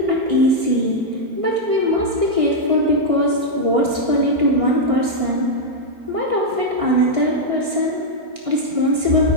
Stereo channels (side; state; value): left; late; 4.4 ms